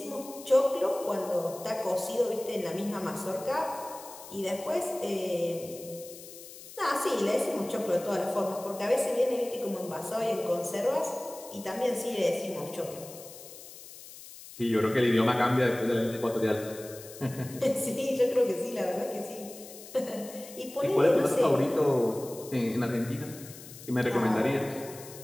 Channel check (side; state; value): left; noise; hiss, 16 dB below the sound